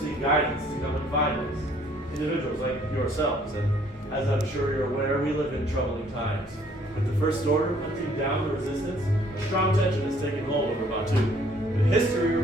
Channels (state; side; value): normal; both; correlation 0.61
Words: guidance to come and find us. Individuals like yourselves, and as I'm sure you're aware, we live in troubling times. With the First Order hunting down the Resistance, a strong tension has taken hold over Batu. But history